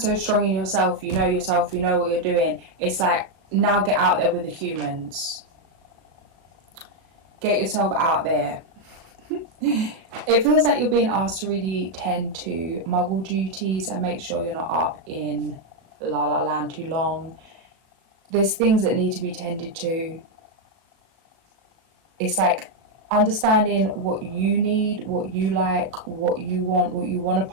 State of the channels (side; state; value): left; late; 37 ms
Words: strong in yourself, you know what you're doing. It's like, now get out there with the humans. Get yourself out there. It feels like you're being asked to really tend to muggle duties and make sure you're not up in La La Land too long. There's things that need to be tended to. It's like understanding what you need, what you like, what you want to